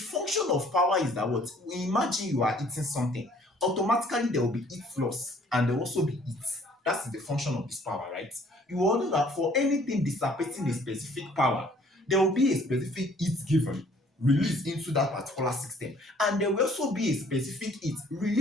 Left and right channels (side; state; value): both; normal; correlation 0.58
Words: of power is that what? Imagine you are eating something. Automatically there will be heat loss and there will also be heat. That's the function of this power, right? You all know that for anything dissipating a specific power, there will be a specific heat given, released into that particular system. And there will also be a specific heat